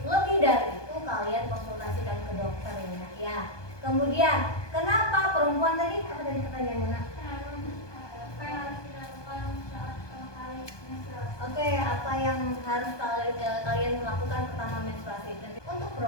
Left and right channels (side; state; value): right; late; 1.2 ms